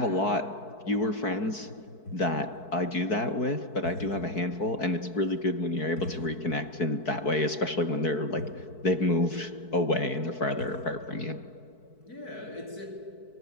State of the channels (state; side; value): late; right; 4.6 ms